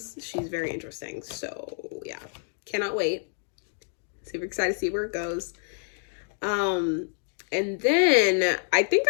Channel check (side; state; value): right; silent; 60 dB below the other